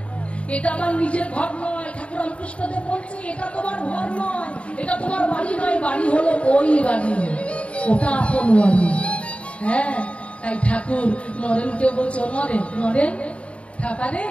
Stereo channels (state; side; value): late; right; 0.062 ms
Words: এটা আমার নিজের ঘর নয়। ঠাকুর রামকৃষ্ণদেব বলছে এটা তোমার ঘর নয়, এটা তোমার বাড়ি নয়, বাড়ি হলো ওই বাড়ি, ওটা আপন বাড়ি। হ্যাঁ, তাই ঠাকুর নরেনকে বলছে, নরেন নরেন ঠাপারে